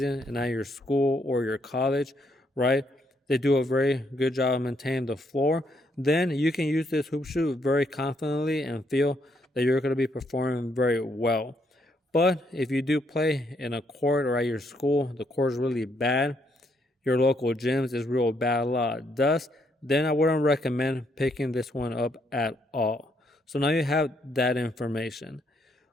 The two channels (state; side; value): normal; both; correlation 0.74